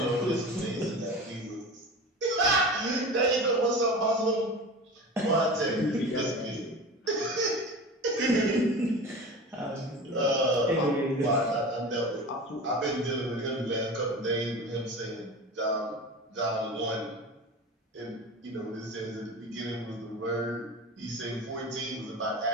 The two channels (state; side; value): normal; both; correlation 0.32